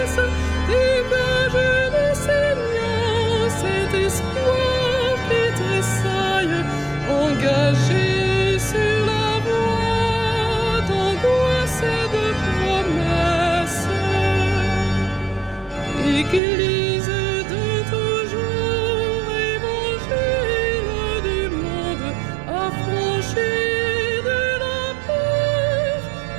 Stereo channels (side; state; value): left; drops out; at 16.4 s